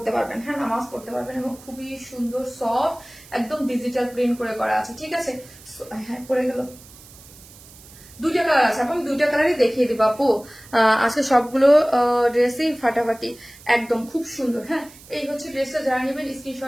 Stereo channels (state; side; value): noise; right; hiss, 21 dB below the sound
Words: পারবেন, হ্যাঁ নামাজ পড়তে পারবেন, এবং খুবই সুন্দর সফট একদম ডিজিটাল প্রিন্ট করে করা আছে। ঠিক আছে, হ্যাঁ পড়ে গেল। দুইটা কালার আছে আপু, আমি দুইটা কালারই দেখিয়ে দিব আপু। আজকে সবগুলো ড্রেসই ফাটাফাটি একদম খুব সুন্দর। হ্যাঁ এই হচ্ছে ড্রেসটা, যারা নেবেন